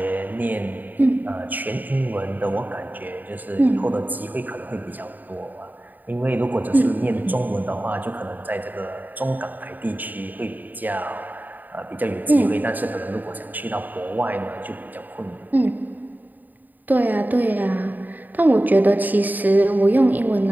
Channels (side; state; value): left; late; 0.086 ms